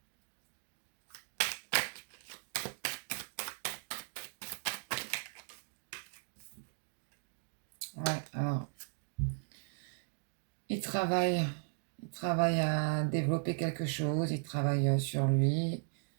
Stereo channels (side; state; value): left; silent; digital silence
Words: Ouais, alors, il travaille à développer quelque chose, il travaille sur lui.